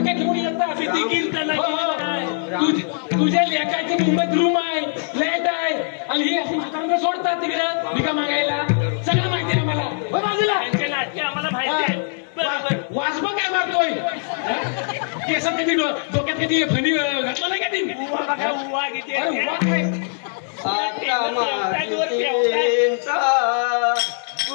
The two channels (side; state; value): right; silent; digital silence